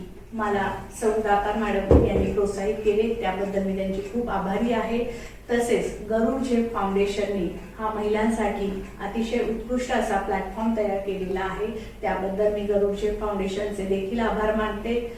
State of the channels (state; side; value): identical; both; correlation 1.00